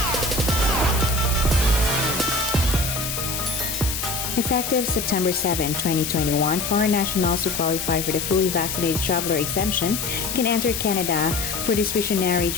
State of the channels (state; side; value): noise; left; hiss, 4 dB below the sound